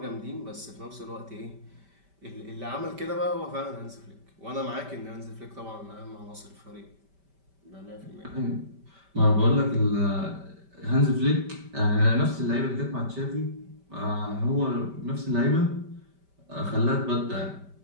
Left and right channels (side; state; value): left; late; 5.1 ms